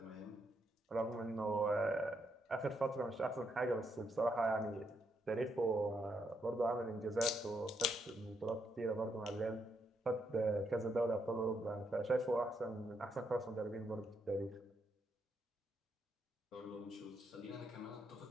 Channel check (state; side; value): normal; both; correlation 0.78